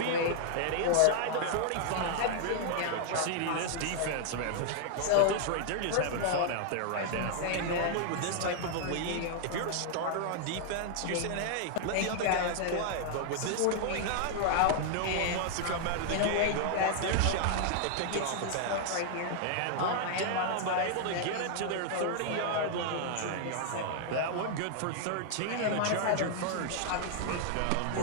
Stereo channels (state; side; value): different; both; correlation -0.01